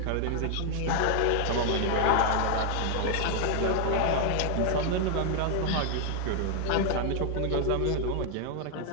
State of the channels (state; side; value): different; both; correlation 0.00